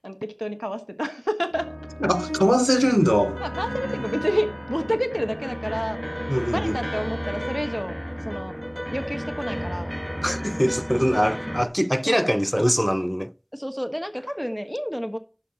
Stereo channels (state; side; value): identical; both; correlation 1.00